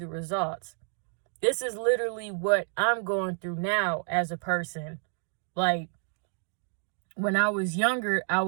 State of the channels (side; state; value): left; silent; 58 dB below the other